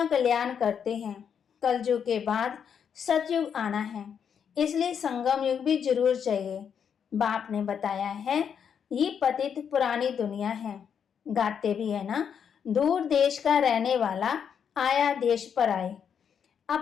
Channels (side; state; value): right; quieter; 7.6 dB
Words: कल्याण करते हैं। कलयुग के बाद सतयुग आना है, इसलिए संगम युग भी जरूर चाहिए। बाप ने बताया है, ये पतित पुरानी दुनिया है। गाते भी है ना, दूर देश का रहने वाला आया देश पर आए।